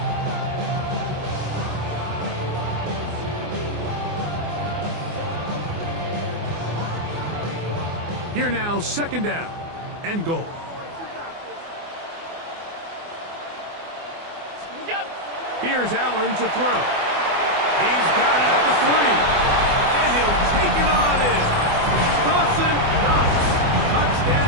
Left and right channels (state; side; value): late; left; 24 ms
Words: Here now, 2nd down and goal. Here's Allen to throw. He's got it at the 3. And he'll take it on in. Dawson Knox.